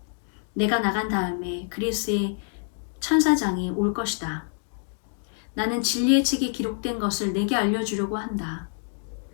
내가 나간 다음에 그리스의 천사장이 올 것이다. 나는 진리의 책에 기록된 것을 내게 알려주려고 한다.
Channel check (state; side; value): silent; right; 56 dB below the other